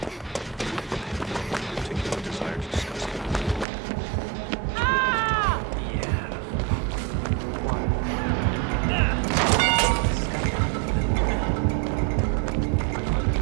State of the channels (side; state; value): left; drops out; at 3.7 s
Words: Particular desire to discuss it. Yeah. Why?